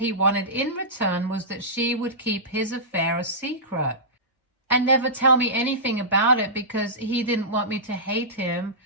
wanted in return was that she would keep his affair a secret and never tell me anything about it because he didn't want me to hate him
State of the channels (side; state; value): both; normal; correlation -0.17